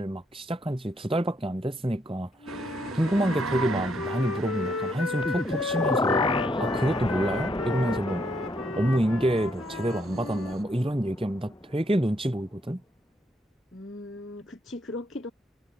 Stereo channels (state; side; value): normal; both; correlation 0.74